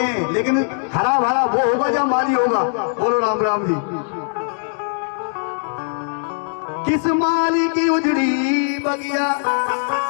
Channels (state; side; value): silent; right; digital silence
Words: लेकिन हरा भरा वो होगा जब माली होगा। बोलो राम राम जी। किस माली की उजड़ी बगिया,